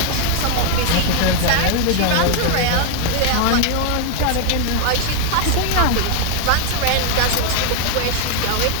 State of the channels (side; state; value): both; different; correlation 0.00